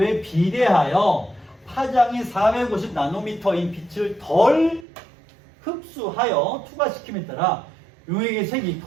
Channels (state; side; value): drops out; left; at 4.9 s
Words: 비례하여 파장이 450 나노미터인 빛을 덜 흡수하여 투과시킴에 따라 용액의 색이